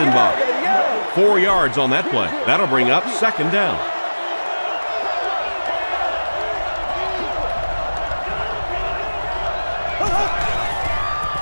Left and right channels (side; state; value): both; inverted; correlation -1.00